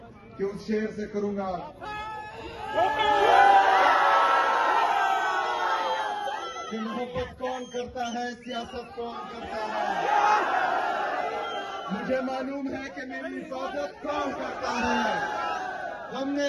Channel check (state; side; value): identical; both; correlation 1.00